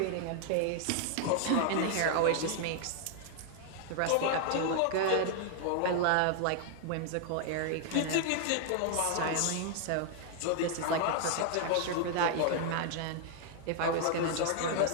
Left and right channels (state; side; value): different; both; correlation 0.00